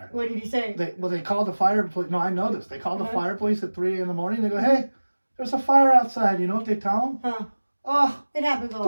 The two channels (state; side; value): inverted; both; correlation -1.00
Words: What did he say? They called the fire police. No, I know this. They called the fire police at 3 a.m. They go, hey, there's a fire outside. You know what they tell them? Huh. Oh, it happens all the